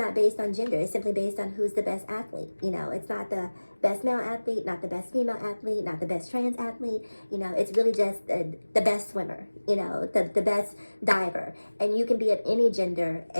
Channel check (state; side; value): inverted; both; correlation -1.00